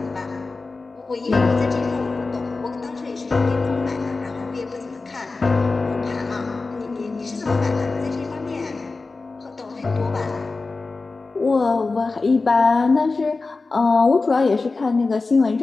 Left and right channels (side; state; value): right; quieter; 3.8 dB